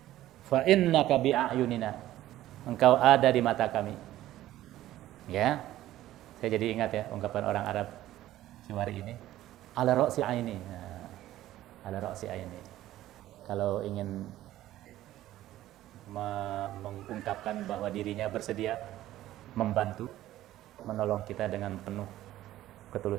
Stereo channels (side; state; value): left; quieter; 14.3 dB